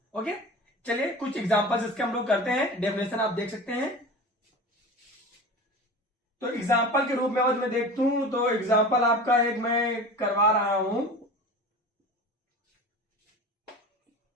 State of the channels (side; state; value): both; normal; correlation 0.34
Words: Okay, चलिए कुछ एग्जांपल्स इसके हम लोग करते हैं। डेफिनेशन आप देख सकते हैं। तो एग्जाम्पल के रूप में अगर मैं देखता हूं तो एग्जाम्पल आपका एक मैं करवा रहा हूं,